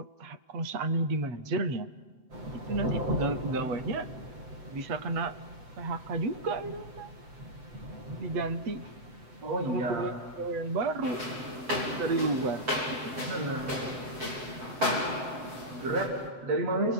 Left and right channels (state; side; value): late; left; 7.9 ms